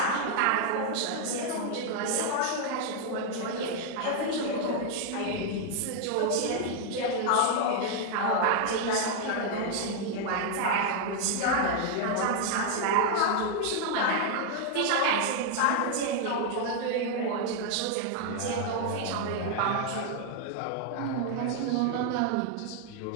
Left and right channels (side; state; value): both; different; correlation 0.00